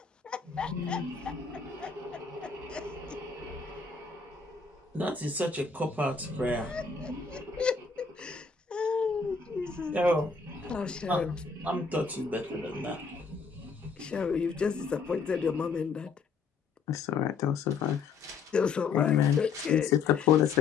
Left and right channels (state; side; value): quieter; right; 5.2 dB